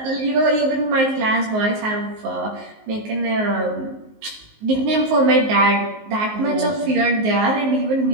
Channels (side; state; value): left; late; 19 ms